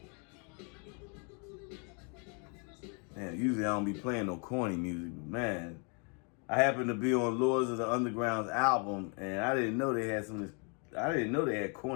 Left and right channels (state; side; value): quieter; right; 36.4 dB